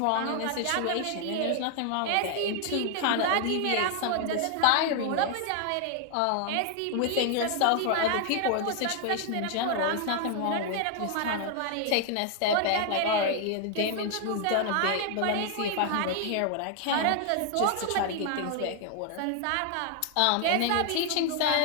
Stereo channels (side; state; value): both; different; correlation 0.00